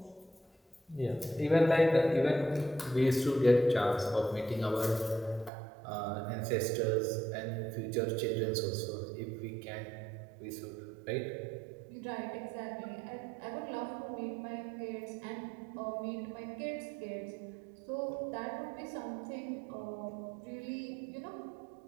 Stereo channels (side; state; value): left; drops out; at 5.5 s